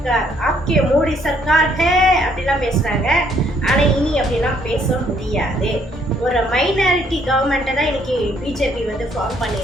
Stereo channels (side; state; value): both; normal; correlation 0.67